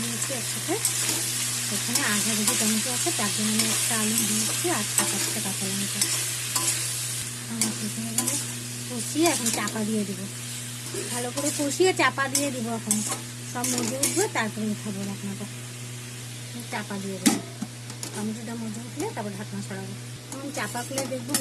দিয়েছি একসাথে। এখানে আধা কেজি টমেটো আছে, তার জন্য আমি একটা আলু দিয়েছি আর 7-8টা কাঁচা লঙ্কা। আমার কষিয়ে এখন চাপা দিয়ে দেবো। ভালো করে কষিয়ে চাপা দিয়ে দেবো। এখন সব মজে উঠবে, তারপরে উঠাবো ঢাকনাটা। চাপা দিয়ে দেবো। টমেটোটা মজে উঠলে তারপর ঢাকনা সরাবো। এখন চাপা খুলে দেখবো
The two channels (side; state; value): both; identical; correlation 1.00